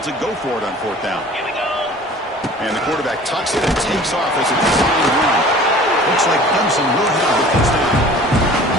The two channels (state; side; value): normal; both; correlation 0.46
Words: to go for it on 4th down. Here we go. And the quarterback tucks it and takes off as a design run. Looks like Clemson will have it this time.